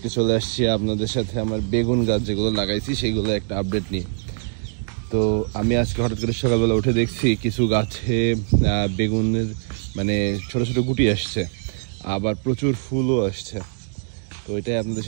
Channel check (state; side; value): silent; left; 64 dB below the other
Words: চলে আসছি আপনাদের সাথে আমার বেগুন গাছ যেগুলো লাগাইছি সেইগুলো একটা আপডেট নিয়ে। তো আমি আজকে হঠাৎ করে সকালবেলা উঠে দেখছি কিছু গাছে বেগুনের মানে ছোট ছোট গুটি আসছে, আবার প্রচুর ফুলও আসছে। তো এটাই আপনাদের